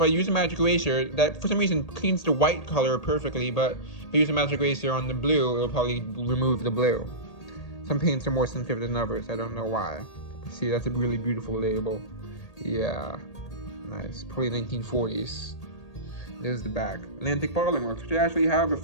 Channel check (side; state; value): right; late; 1.8 ms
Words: I use a magic eraser, that for some reason cleans the white color perfectly, but if I use a magic eraser on the blue, it'll probably remove the blue. Some paints are more sensitive than others, I don't know why. See, that's a really beautiful label. Yeah, nice, probably 1940s. There's the back. Atlantic Bottling Works, which I actually have a